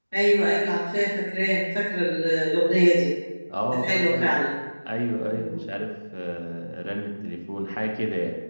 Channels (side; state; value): both; inverted; correlation -1.00